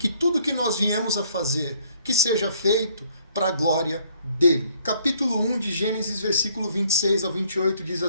tudo que nós viemos a fazer, que seja feito para a glória dele. Capítulo 1 de Gênesis, versículo 26 ao 28, diz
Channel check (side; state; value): both; inverted; correlation -0.63